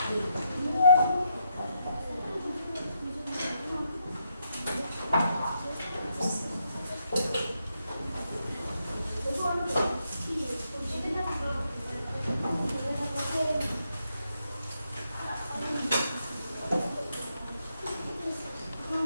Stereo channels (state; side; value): inverted; both; correlation -0.80